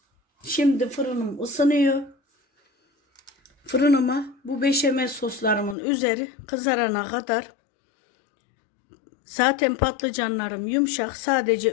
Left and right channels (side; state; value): right; drops out; at 5.8 s